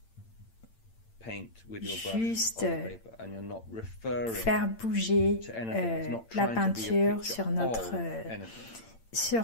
juste faire bouger la peinture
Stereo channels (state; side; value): late; right; 8.8 ms